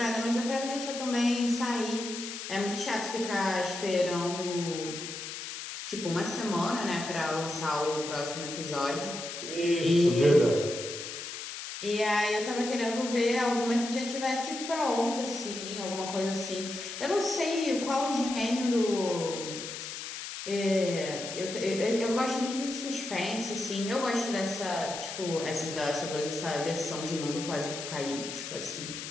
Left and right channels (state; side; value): noise; left; hiss, 8 dB below the sound